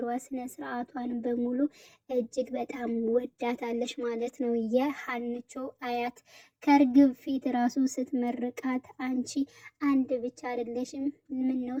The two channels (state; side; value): identical; both; correlation 1.00